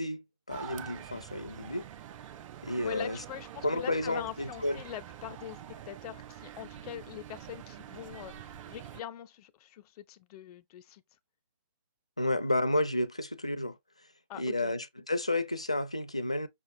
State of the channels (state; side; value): inverted; both; correlation -0.78